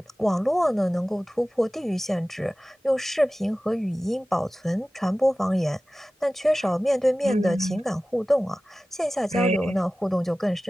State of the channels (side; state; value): both; normal; correlation 0.96